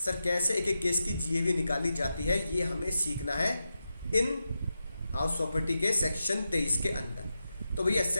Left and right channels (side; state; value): both; inverted; correlation -0.89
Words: कैसे एक एक केस की जीएवी निकाली जाती है, ये हमें सीखना है इन हाउस प्रॉपर्टी के सेक्शन 23 के अंदर। तो भैया